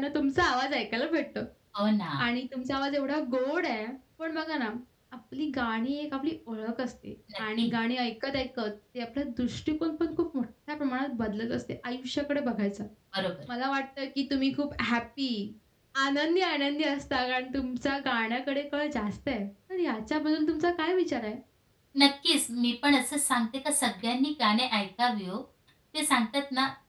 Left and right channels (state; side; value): identical; both; correlation 1.00